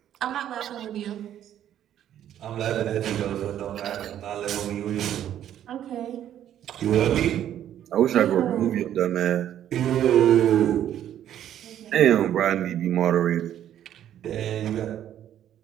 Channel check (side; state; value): left; quieter; 10.9 dB